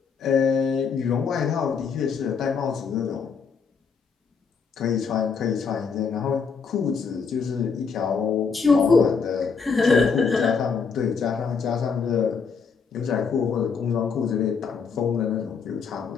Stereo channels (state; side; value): quieter; right; 5.6 dB